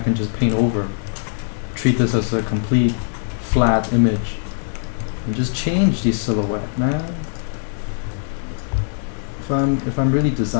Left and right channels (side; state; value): right; silent; digital silence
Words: just paint over. Treat this as a complete flat image. And just change the silhouette, man. If I'm really